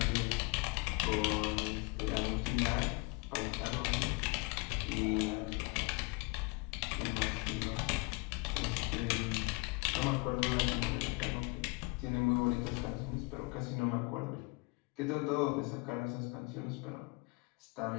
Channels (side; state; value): right; quieter; 29.1 dB